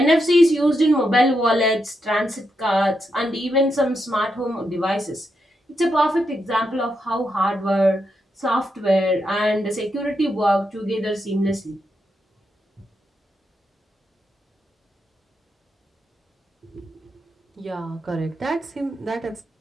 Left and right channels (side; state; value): both; normal; correlation 0.83